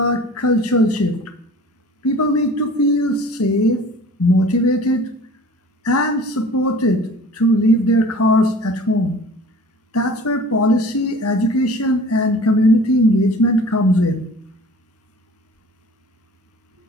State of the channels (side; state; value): both; normal; correlation 0.44